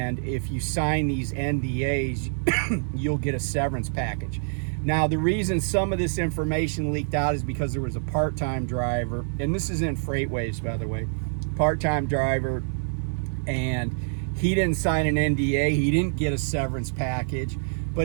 if you sign these NDAs, you'll get a severance package. Now, the reason some of this information leaked out is because there was a part-time driver, and this is in FreightWaves, by the way, part-time driver, and he didn't sign an NDA. He didn't get a severance package,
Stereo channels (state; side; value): silent; left; 58 dB below the other